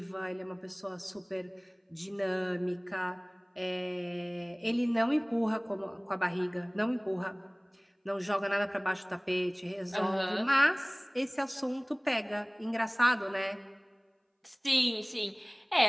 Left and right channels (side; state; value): both; identical; correlation 1.00